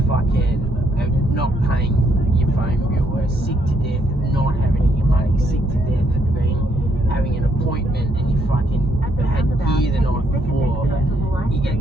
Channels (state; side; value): normal; both; correlation 0.72